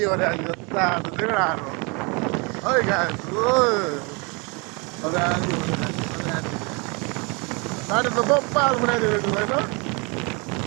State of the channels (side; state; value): left; quieter; 30.5 dB